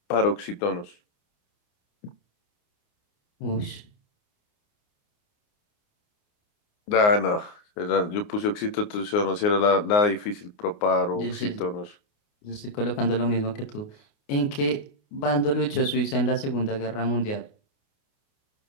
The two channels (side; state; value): right; late; 29 ms